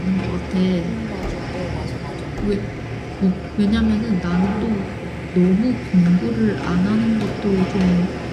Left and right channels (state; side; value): identical; both; correlation 1.00